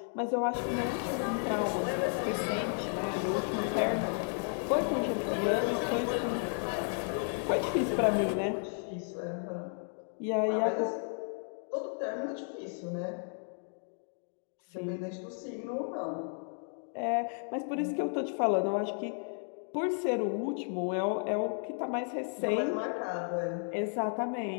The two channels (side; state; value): right; silent; 56 dB below the other